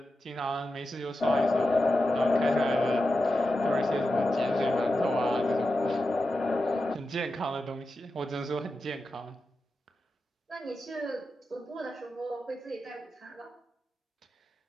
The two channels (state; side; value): normal; both; correlation 0.91